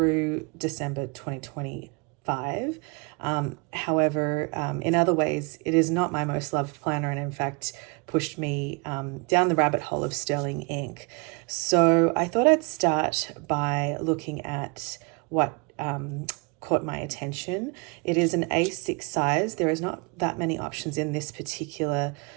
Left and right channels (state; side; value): quieter; left; 31.7 dB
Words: December 2025. However, in other ways, it is not my most loved planner, and in fact pushed me down the rabbit hole of sterling ink. So I thought I'd start by looking at what caught my attention. It is an A6 size. There is not that many options in this particular